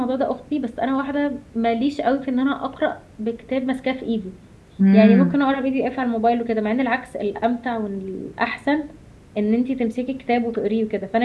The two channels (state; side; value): identical; both; correlation 1.00